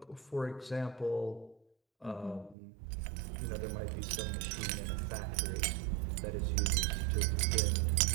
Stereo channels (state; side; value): drops out; left; at 2.6 s